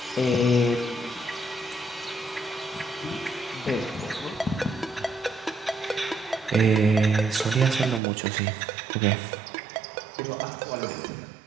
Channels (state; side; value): drops out; left; at 8.0 s